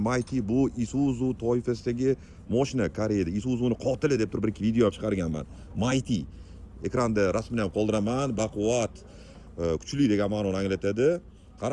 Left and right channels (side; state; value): both; identical; correlation 1.00